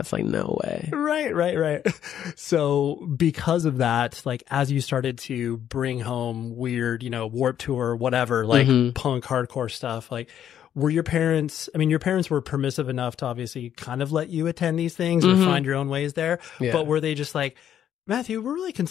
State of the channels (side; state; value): right; quieter; 10.0 dB